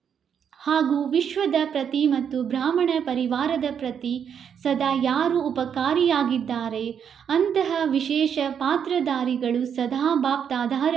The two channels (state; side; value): quieter; left; 7.9 dB